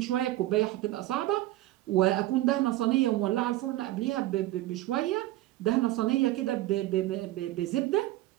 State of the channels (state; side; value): quieter; left; 16.1 dB